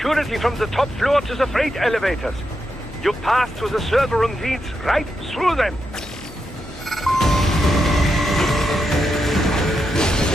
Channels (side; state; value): both; normal; correlation 0.85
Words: from the top floor to the freight elevators. You pass through the server room leads right through them.